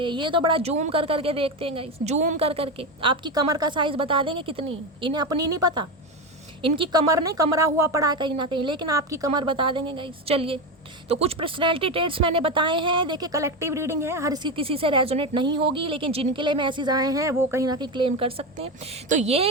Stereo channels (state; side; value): normal; both; correlation 0.16